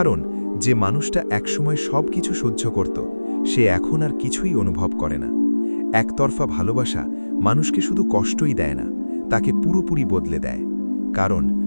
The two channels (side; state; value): both; inverted; correlation -1.00